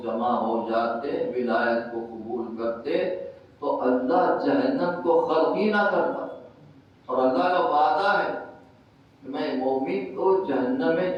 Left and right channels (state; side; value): identical; both; correlation 1.00